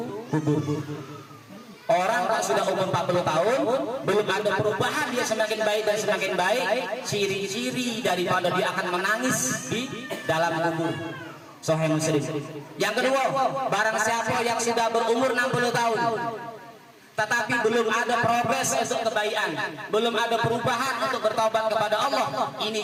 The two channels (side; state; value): both; identical; correlation 1.00